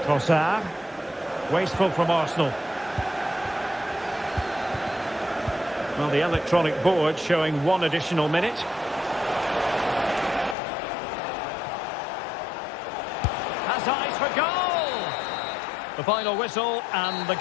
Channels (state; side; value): drops out; right; at 10.6 s